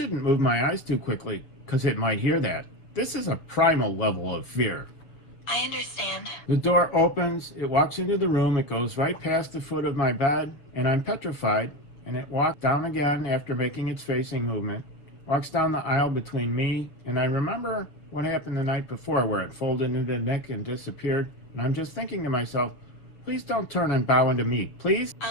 move my eyes too quickly, because it might hear that. This is a primal level of fear. I understand. The door opens, it walks into the room, it goes right past the foot of my bed, and I'm petrified, and it walks down again after making its facing movement, walks down the aisle between me, and I remember what happened the night before where it folded into Nick and disappeared, and I'm just thinking to myself, please don't turn and bow into me, please?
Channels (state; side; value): late; right; 6.8 ms